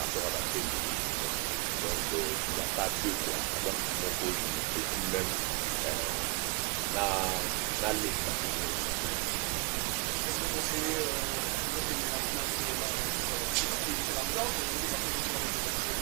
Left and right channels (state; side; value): quieter; left; 32.0 dB